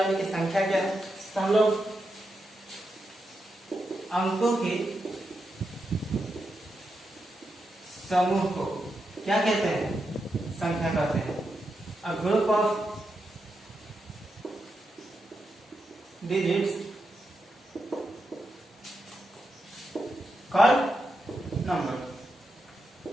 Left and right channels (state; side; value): normal; both; correlation 0.86